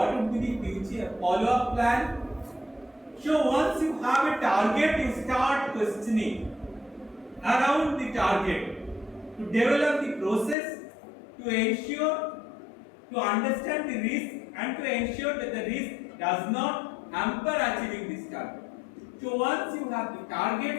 would be the future follow-up plan? So once you have a target, you start questioning around the target to develop the process to ensure, to understand the risk and to ensure that the risk does not hamper achieving this target. So once you have the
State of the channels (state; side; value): drops out; right; at 10.6 s